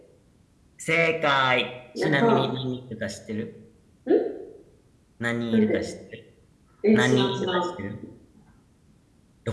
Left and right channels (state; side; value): identical; both; correlation 1.00